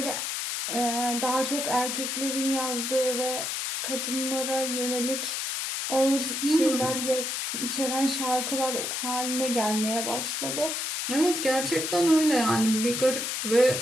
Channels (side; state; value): left; noise; hiss, 2 dB below the sound